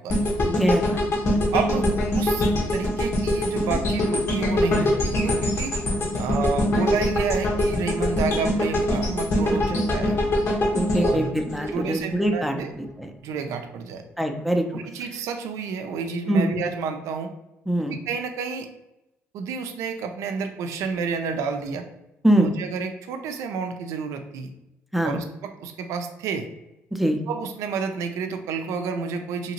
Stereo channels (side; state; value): both; normal; correlation 0.73